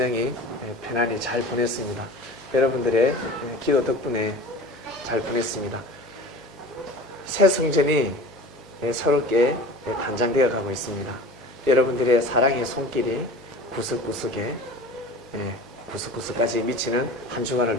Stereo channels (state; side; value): normal; both; correlation 0.38